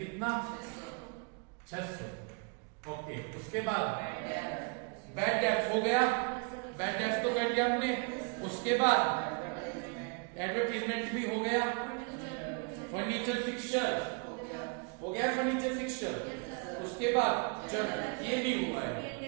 600। ओके। उसके बाद बैड डेब्ट हो गया, बैड डेब्ट तो कर लिया हमने। उसके बाद एडवर्टीजमेंट भी हो गया। फर्नीचर फिक्सचर हो गया, फर्नीचर फिक्सचर। उसके बाद जर्नल, ये भी हुआ है।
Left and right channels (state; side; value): quieter; left; 34.6 dB